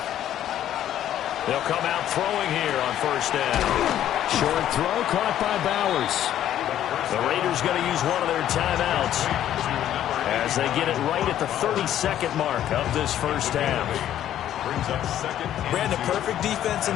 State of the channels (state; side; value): quieter; right; 11.5 dB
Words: They'll come out throwing here on first down. Short throw caught by Bowers. The Raiders going to use one of their timeouts as they get it right at the 32nd mark of this first half. Brandon, perfect defense in